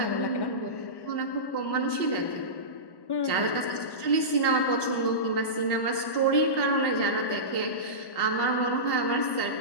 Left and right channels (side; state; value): right; late; 1.1 ms